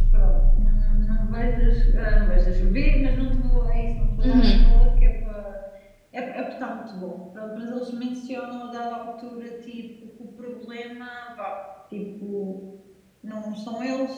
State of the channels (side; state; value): both; identical; correlation 1.00